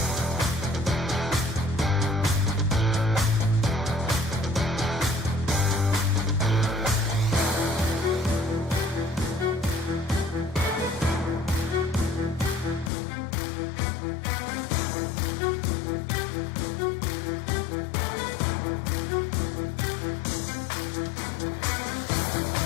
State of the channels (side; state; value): right; drops out; at 12.9 s